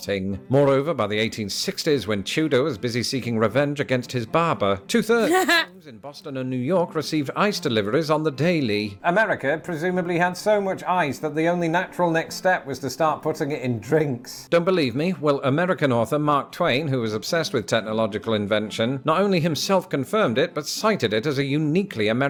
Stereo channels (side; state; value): both; identical; correlation 1.00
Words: Moreover, by the 1860s, when Tudor was busy seeking revenge against his barber, 2/3 of homes in Boston and New York received ice deliveries on the daily. America presumably had so much ice that the only natural next step was to start putting it in drinks. Don't believe me? Well, American author Mark Twain, who was obsessed with technological invention, not only himself confirmed it, but cited it as a uniquely